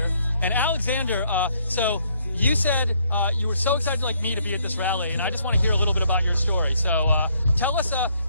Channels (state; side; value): inverted; both; correlation -0.69